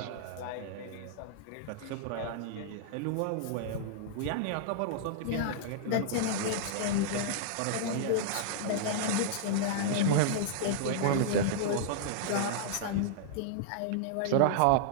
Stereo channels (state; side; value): different; both; correlation -0.01